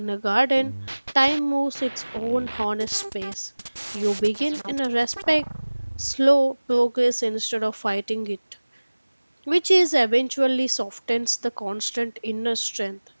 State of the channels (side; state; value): both; inverted; correlation -1.00